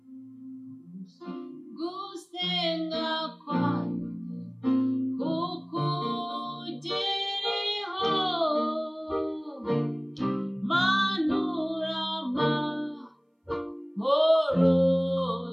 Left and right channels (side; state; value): both; identical; correlation 1.00